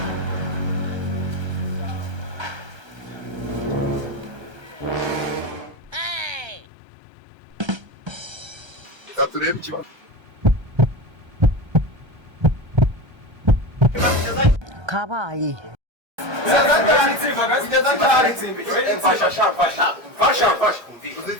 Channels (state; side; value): late; left; 1.3 ms